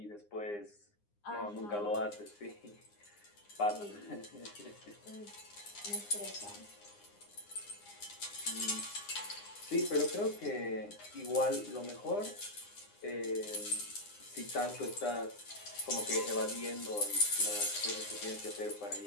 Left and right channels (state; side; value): late; right; 9.8 ms